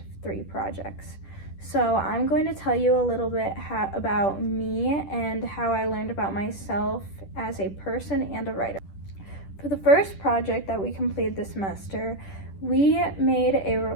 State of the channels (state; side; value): late; right; 10 ms